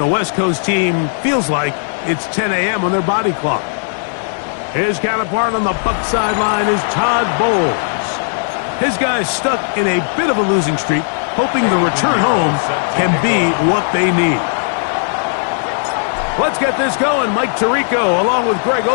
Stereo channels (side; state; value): right; silent; digital silence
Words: West Coast team feels like it's 10 a.m. on their body clock. His counterpart on the Buc sideline is Todd Bowles. His guys stuck in a bit of a losing streak, hoping the return home can be what they need. Let's get this going. Mike Tirico along with Greg